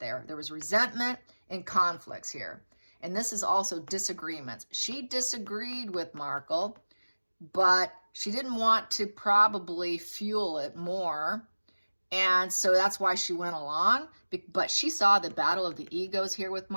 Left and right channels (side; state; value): both; inverted; correlation -1.00